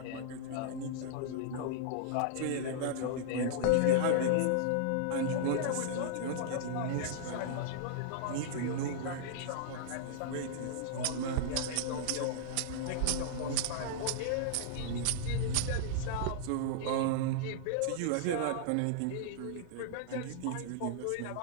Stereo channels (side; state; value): both; different; correlation -0.02